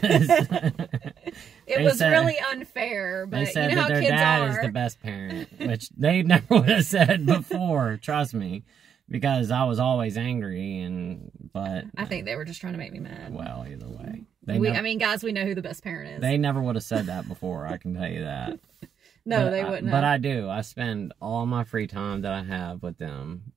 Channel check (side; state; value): left; quieter; 7.9 dB